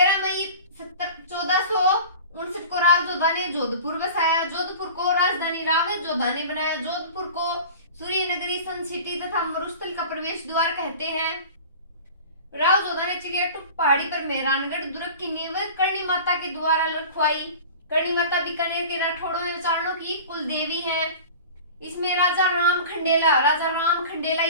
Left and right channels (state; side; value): inverted; both; correlation -0.38